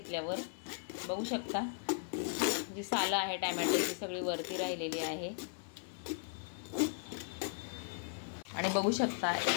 बघू शकता जी सालं आहे टोमॅटोची सगळी वरती राहिलेली आहे। आणि बघू शकता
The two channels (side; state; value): right; silent; 53 dB below the other